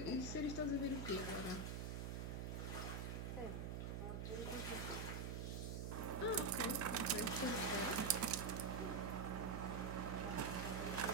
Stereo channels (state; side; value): noise; right; hum, 3 dB below the sound